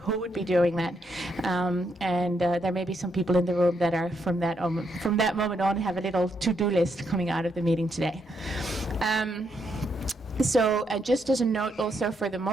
would be doing that. And there may be some people in the room that are from that moment on have a little to-do list coming out of the meeting today. So just as a note also for the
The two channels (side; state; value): both; normal; correlation 0.78